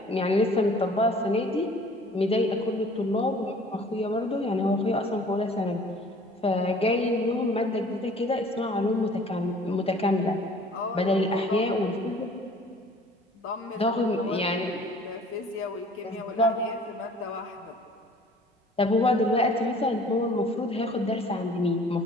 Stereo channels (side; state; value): both; normal; correlation 0.51